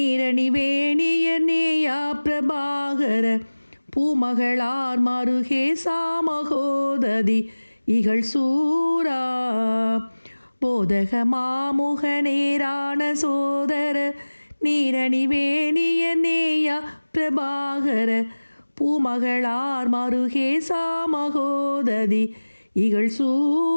வேணிய நேயா பிரபாகர, பூமகளார் மருகே சாமகோததி இகழ் சூரா, போதக மாமுக நேரான சோதர, நீரணி வேணிய நேயா பிரபாகர, பூமகளார் மருகே சாமகோததி இகழ்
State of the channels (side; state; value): both; inverted; correlation -1.00